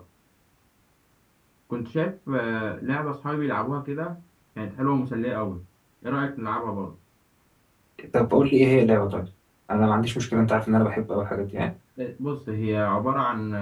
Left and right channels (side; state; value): both; identical; correlation 1.00